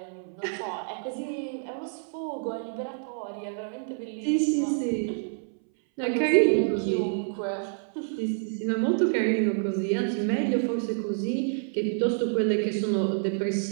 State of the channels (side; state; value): left; silent; 59 dB below the other